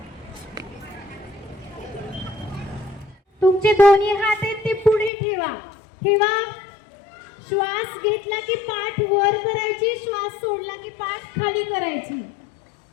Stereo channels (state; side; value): drops out; right; at 5.1 s